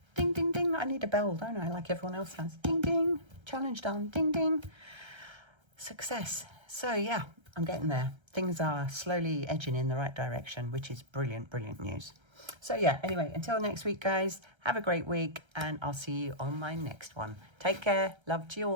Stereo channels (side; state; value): left; late; 1.3 ms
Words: Ding, ding, ding. I need a bell, don't I? Like everyone else has. Ding, ding. Challenge done. Ding, ding. Success. So, yeah, I'm getting there. Things are slowly edging in the right direction, which is brilliant, brilliant news. So, yeah, anyway, until next week, guys, have a great week, and I'll see you on my next one. Take care. Love to you